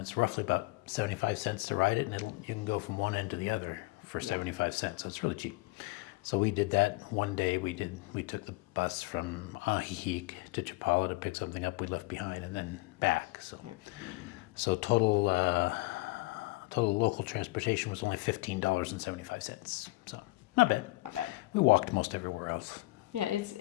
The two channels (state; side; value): quieter; right; 22.1 dB